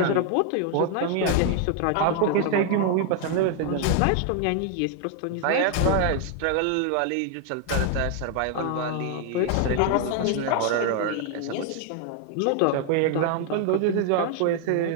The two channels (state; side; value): different; both; correlation 0.00